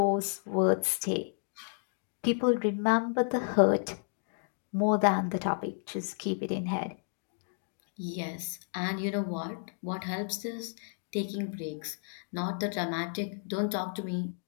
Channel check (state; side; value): silent; right; digital silence